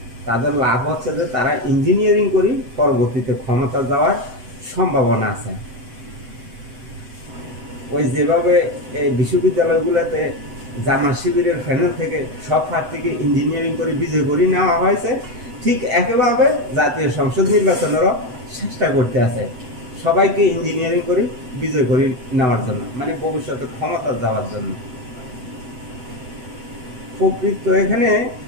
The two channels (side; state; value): left; late; 8.0 ms